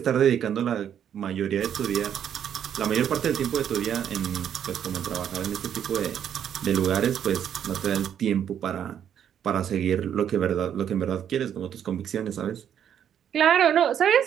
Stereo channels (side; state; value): left; quieter; 9.2 dB